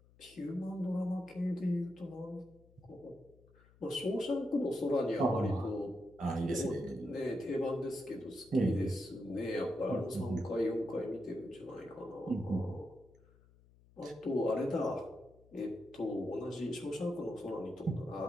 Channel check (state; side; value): noise; left; hum, 27 dB below the sound